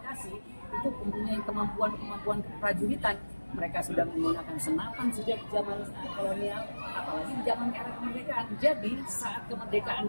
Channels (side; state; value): both; inverted; correlation -1.00